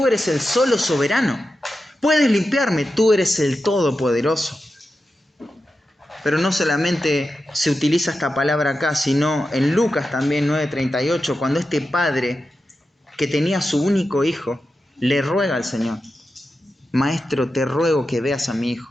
eres el solo soberano. Puedes limpiarme, tú eres el todopoderoso. Pero no solamente se utiliza esta palabra acá, sino en Lucas también 9:38, cuando este padre que tenía su único hijo le ruega al Señor: Maestro, te ruego que veas a mi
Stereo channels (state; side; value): normal; both; correlation 0.91